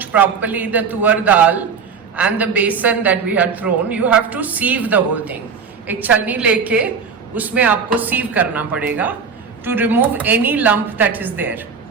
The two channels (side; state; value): left; quieter; 5.8 dB